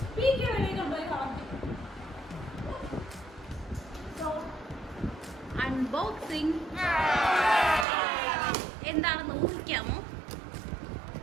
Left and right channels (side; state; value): left; drops out; at 7.9 s